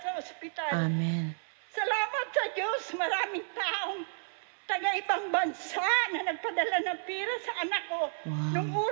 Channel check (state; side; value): silent; left; 57 dB below the other